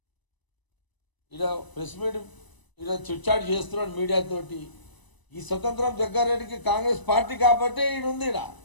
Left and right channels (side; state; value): right; late; 1.0 ms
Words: ఇలా ప్రెస్ మీట్ ఇలా చిట్చాట్ చేస్తున్నాడు మీడియాతోటి. ఈ స్వతంత్రం జగ్గారెడ్డికి కాంగ్రెస్ పార్టీ కాబట్టి ఈడుంది. ఇడ